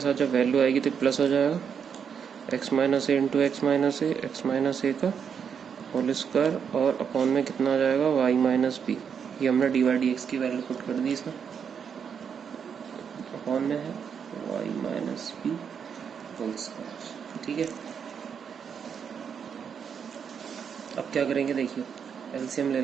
जब वैल्यू आएगी तो प्लस हो जाएगा, x माइनस ए इंटू एक्स माइनस ए, एक्स माइनस ए का होल स्क्वायर, और अपॉन में कितना आ जाएगा y माइनस बी। ये हमने डी वाई डी एक्स की वैल्यू पुट कर दी इसमें, अपॉन में है y minus B whole square. ठीक है, अब क्या करेंगे देखिए, एलसीएम ले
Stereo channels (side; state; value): left; quieter; 7.1 dB